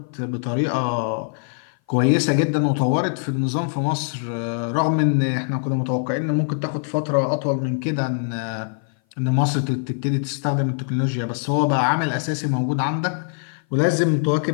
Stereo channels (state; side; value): silent; right; 58 dB below the other